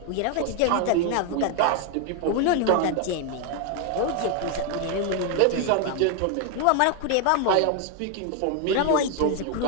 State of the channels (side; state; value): both; different; correlation 0.01